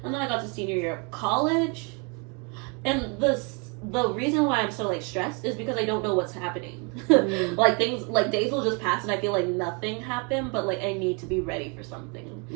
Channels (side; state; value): left; quieter; 33.6 dB